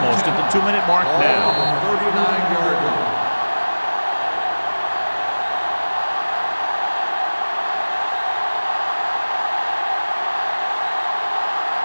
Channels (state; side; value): inverted; both; correlation -1.00